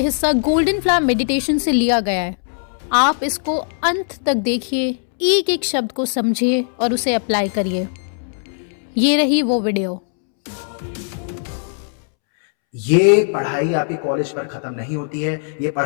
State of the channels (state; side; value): silent; right; 66 dB below the other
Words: हिस्सा गोल्डन फ्लावर मेडिटेशन से लिया गया है। आप इसको अंत तक देखिए, एक एक शब्द को समझिए और उसे अप्लाई करिए। ये रही वो वीडियो। ये पढ़ाई आपके कॉलेज पर खत्म नहीं होती है। ये